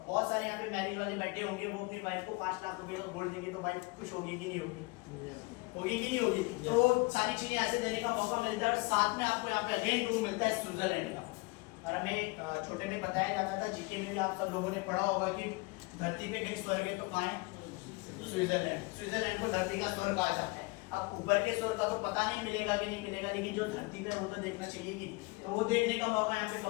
बहुत सारे यहाँ पे मैरिज वाले बैठे होंगे, वो अपनी वाइफ को 5 लाख रुपए का गोल्ड देंगे, तो वाइफ खुश होगी कि नहीं होगी? होगी कि नहीं होगी? तो सारी चीजें ऐसे देने का मौका मिलता है। और साथ में आपको यहाँ पे अगेन टूर मिलता है स्विट्जरलैंड का। और हमें छोटे में बताया जाता था, जीके में भी आप सब लोगों ने पढ़ा होगा कि धरती पे कहीं स्वर्ग है तो कहाँ है? स्विट्जरलैंड। स्विट्जरलैंड को धरती का स्वर्ग कहा जाता है। अब ऊपर के स्वर्ग का तो पता नहीं मिलेगा कि नहीं मिलेगा, लेकिन जो धरती पे वो तो देखना चाहिए कि, तो वो देखने का मौका यहाँ पे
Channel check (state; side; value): quieter; right; 25.7 dB